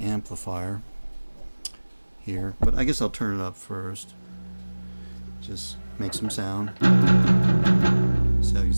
here, but I guess I'll turn it up first. Just make some sound. So you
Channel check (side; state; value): both; inverted; correlation -1.00